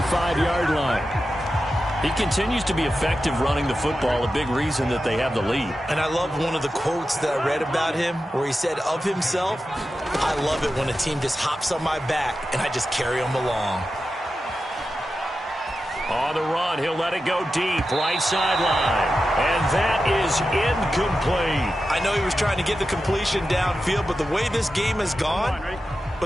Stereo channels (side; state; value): both; normal; correlation 0.91